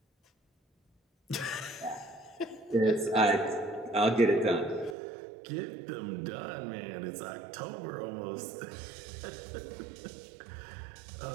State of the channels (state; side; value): drops out; left; at 5.0 s